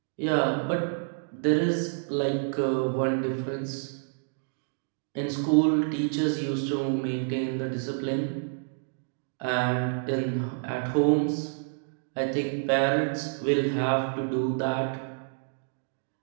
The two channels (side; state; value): left; silent; digital silence